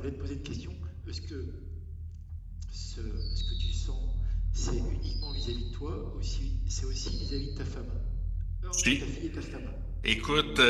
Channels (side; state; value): both; identical; correlation 1.00